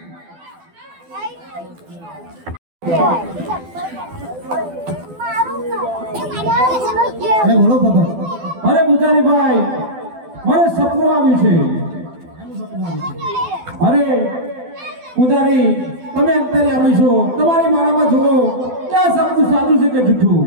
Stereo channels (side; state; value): left; late; 12 ms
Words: અરે બોલો બાબા અરે પૂજારીભાઈ, મને સપનું આવ્યું છે. એનું સપનું આવ્યું છે. અરે પૂજારી, તમે અંતરે આવી છો, તમારી માળામાં જુઓ કે આ સપનું સાચું છે કે જૂઠું.